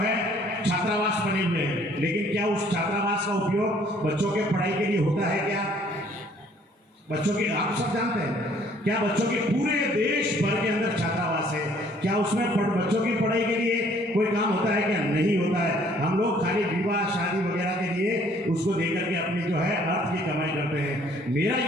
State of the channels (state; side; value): normal; both; correlation 0.60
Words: छात्रावास बने हुए हैं, लेकिन क्या उस छात्रावास का उपयोग बच्चों के पढ़ाई के लिए होता है? क्या बच्चों के, आप सब जानते हैं, क्या बच्चों के पूरे देश भर के अंदर छात्रावास है, क्या उसमें बच्चों की पढ़ाई के लिए कोई काम होता है? क्या नहीं होता है। हम लोग खाली विवाह शादी वगैरह के लिए उसको देकर के अपनी जो है अर्थ की कमाई करते हैं। मेरा